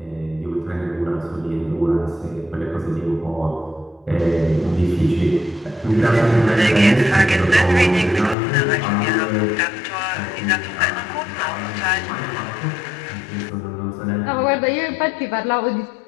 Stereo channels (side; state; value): right; drops out; at 8.3 s